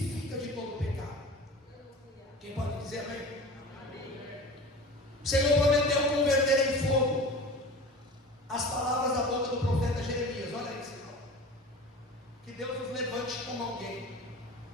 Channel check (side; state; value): both; normal; correlation 0.37